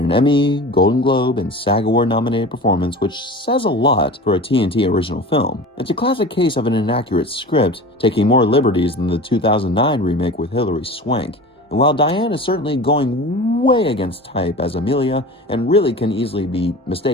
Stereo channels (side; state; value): both; normal; correlation 0.35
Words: Emmy, Golden Globe, and SAG Award nominated performance, which says a lot for a TNT original film. It's a classic case of an inaccurate script, taking more liberties than the 2009 remake with Hilary Swank. And while Diane is certainly going way against type as Amelia, and really can easily be